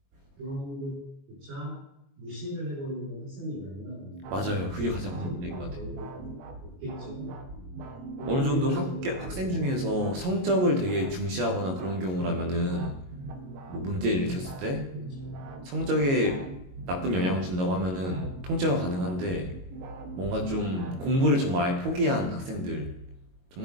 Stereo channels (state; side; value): late; left; 22 ms